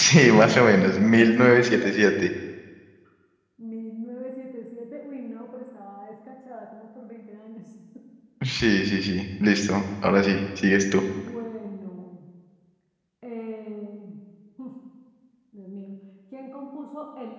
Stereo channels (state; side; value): identical; both; correlation 1.00